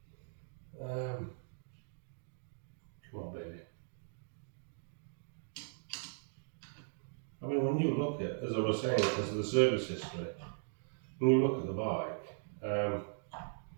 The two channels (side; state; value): left; silent; digital silence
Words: Come on, baby. I mean, when you look at, as I was saying, as the service history, when you look at the bike,